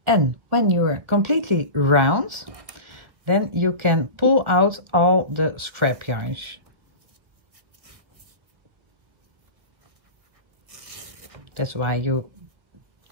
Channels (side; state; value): left; late; 1.6 ms